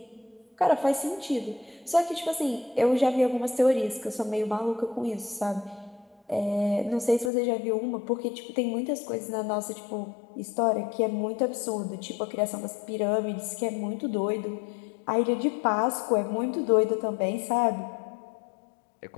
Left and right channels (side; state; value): right; drops out; at 7.3 s